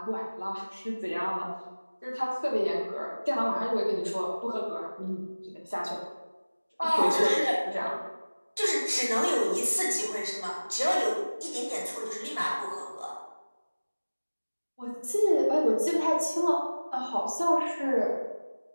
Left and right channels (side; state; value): both; inverted; correlation -1.00